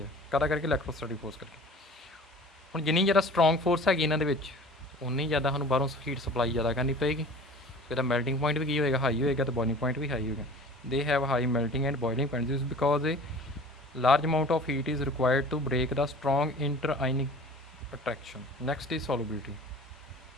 ਆ ਕਾਹਦਾ ਕਰਕੇ electrostatic force ਕਰਕੇ। ਹੁਣ ਜਿੰਨੀ ਜ਼ਿਆਦਾ ਸਟਰੋਂਗ ਫੋਰਸ ਹੈਗੀ ਇਹਨਾਂ ਦੇ ਵਿੱਚ ਉਨੀ ਜ਼ਿਆਦਾ ਸਾਨੂੰ ਬਾਹਰੋਂ ਹੀਟ ਸਪਲਾਈ ਜ਼ਿਆਦਾ ਕਰਨੀ ਪਏਗੀ। ਇਹਦਾ ਮੈਲਟਿੰਗ ਪੁਆਇੰਟ ਵੀ ਕੀ ਹੋਏਗਾ, ਹਾਈ ਹੋਏਗਾ, ਤੇ ਬੋਇਲਿੰਗ ਪੁਆਇੰਟ ਵੀ ਹਾਈ ਹੋਏਗਾ। They have high melting and boiling point this because A large amount of heat is required to break the strong inter-ionic attraction. Next is solubility.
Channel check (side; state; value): both; normal; correlation 0.43